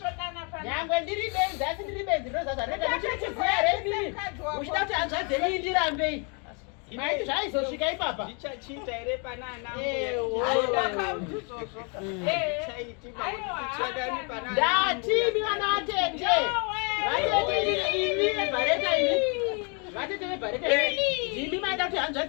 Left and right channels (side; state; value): right; quieter; 35.8 dB